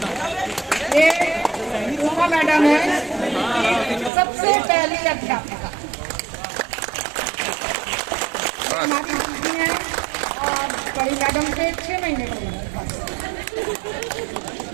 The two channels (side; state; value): left; drops out; at 4.1 s